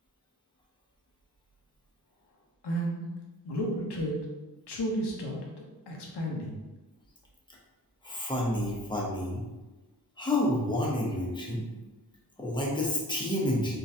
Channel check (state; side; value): normal; both; correlation 0.49